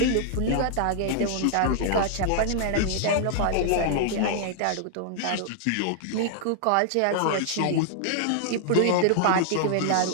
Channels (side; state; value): both; different; correlation -0.01